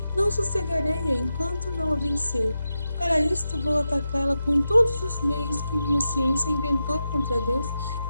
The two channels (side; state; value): both; inverted; correlation -0.89